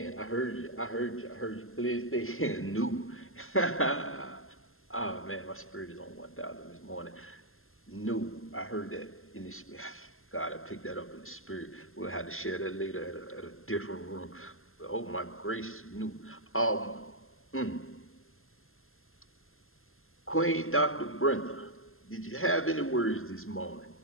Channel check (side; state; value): right; late; 0.61 ms